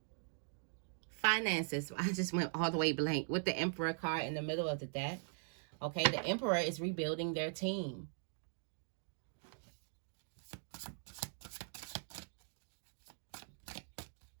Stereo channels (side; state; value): left; silent; digital silence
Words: Finances. I just went all the way blank with the Emperor card in the middle of the deck. Okay, the Emperor is rebuilding their team.